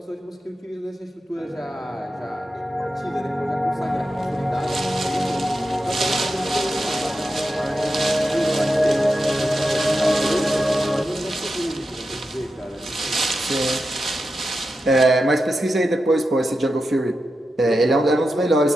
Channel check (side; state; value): both; normal; correlation 0.89